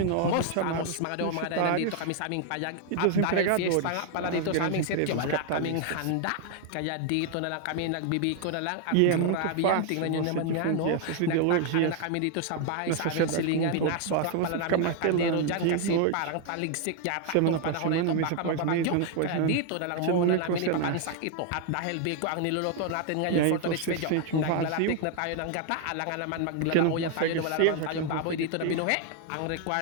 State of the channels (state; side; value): different; both; correlation 0.00